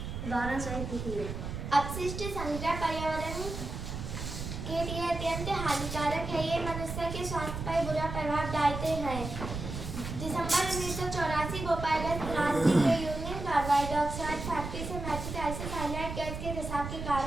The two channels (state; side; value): noise; right; rumble, 6 dB below the sound